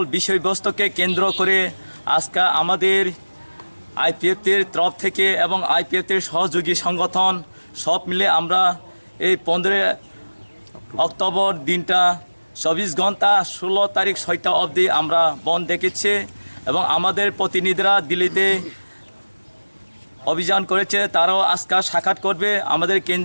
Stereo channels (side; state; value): both; inverted; correlation -1.00